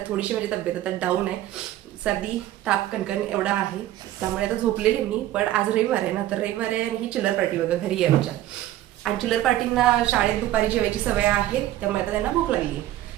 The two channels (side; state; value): left; quieter; 14.0 dB